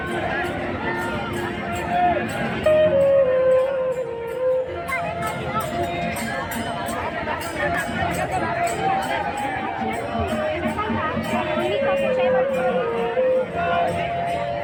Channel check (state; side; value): identical; both; correlation 1.00